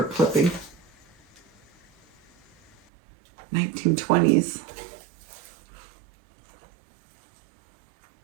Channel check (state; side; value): drops out; left; at 2.8 s